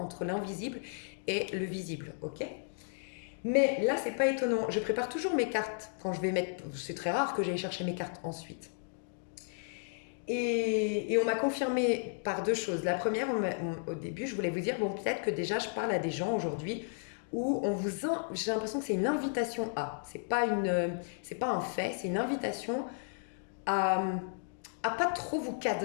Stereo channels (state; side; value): silent; right; digital silence